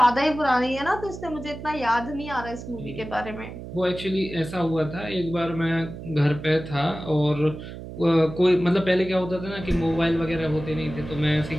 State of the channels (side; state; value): right; noise; hum, 11 dB below the sound